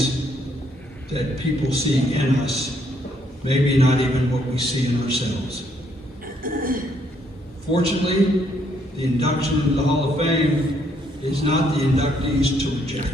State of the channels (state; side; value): normal; both; correlation 0.70